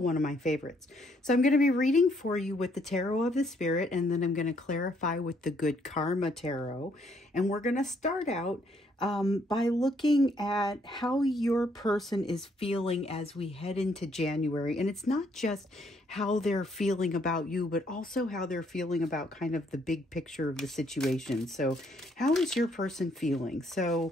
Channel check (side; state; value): both; normal; correlation 0.69